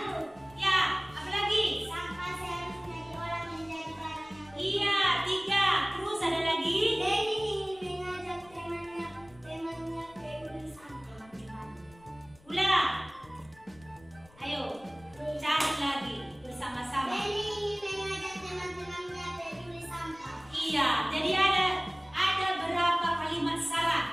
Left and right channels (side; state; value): left; noise; rumble, 26 dB below the sound